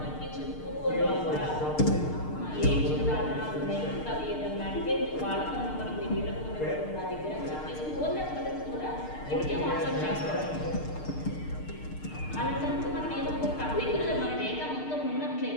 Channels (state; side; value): late; right; 6.6 ms